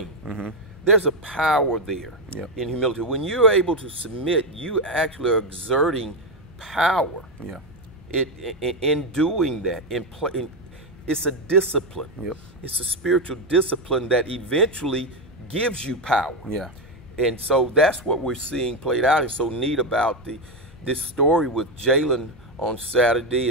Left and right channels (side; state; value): both; normal; correlation 0.08